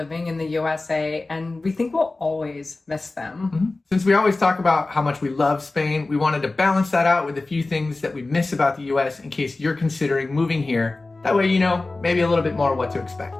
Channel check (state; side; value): quieter; right; 3.2 dB